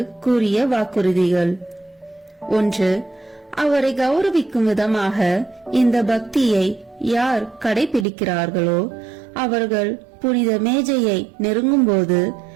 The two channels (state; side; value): drops out; left; at 8.1 s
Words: கூறிய வாக்குறுதிகள். 1. அவரை கௌரவிக்கும் விதமாக இந்த பக்தியை யார் கடைபிடிக்கிறார்களோ அவர்கள் புனித மேஜையை நெருங்கும் போது